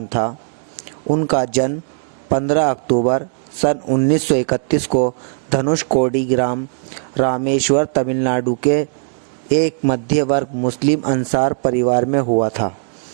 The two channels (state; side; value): silent; left; 67 dB below the other